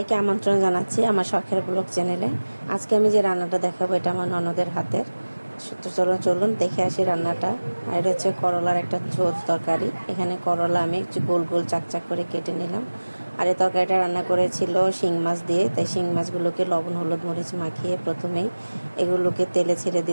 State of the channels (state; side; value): inverted; both; correlation -1.00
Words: আমন্ত্রণ জানাচ্ছি আমার শখের ব্লগ চ্যানেলে। আজকে আমি যে রান্নাটা দেখাবো এটা আমার ননদের হাতের। তো চলুন দেখে আসি রান্নাটা। আর এটা হচ্ছে করলার একটা ঝোল তরকারি। এখানে করলা আমি একটু গোল গোল চাকচাক করে কেটে নিলাম। আর এই তরকারিটা রান্না করেছিল শিং মাছ দিয়ে। তাই শিং মাছগুলোকে লবণ হলুদ মরিচ মাখিয়ে প্রথমেই এগুলোকে তেলে ছেড়ে